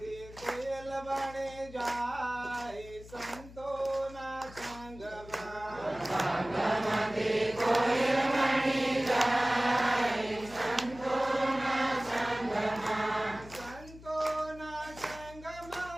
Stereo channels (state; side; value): noise; left; hum, 18 dB below the sound